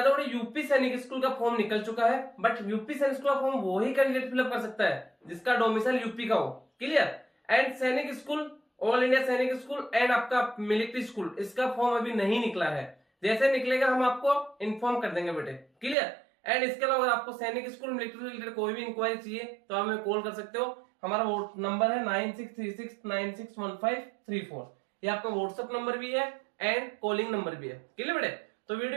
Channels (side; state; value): left; drops out; at 16.0 s